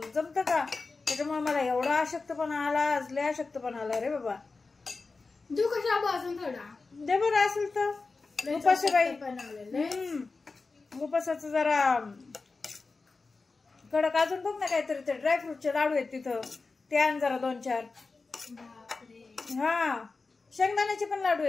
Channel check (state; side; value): quieter; right; 4.0 dB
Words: जमतं का? त्याच्यामुळे मला एवढा अशक्तपणा आला, आज लय अशक्तपणा आला रे बाबा. देऊ का शाबू अजून थोडा? दे बरं असेल तर. उपास बाई. उपासाचं जरा कडक अजून बघ ना काहीतरी. ते ड्रायफ्रूटचे लाडू आहेत तिथं, ते आण जरा 2-4. हा, शेंगदाण्याचे पण लाडू